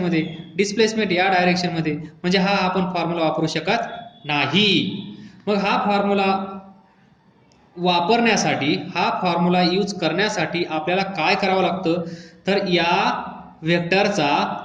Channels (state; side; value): identical; both; correlation 1.00